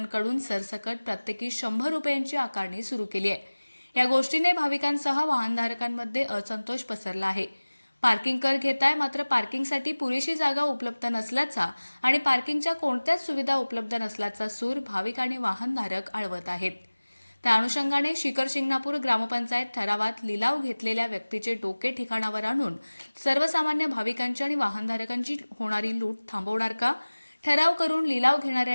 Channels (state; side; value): inverted; both; correlation -1.00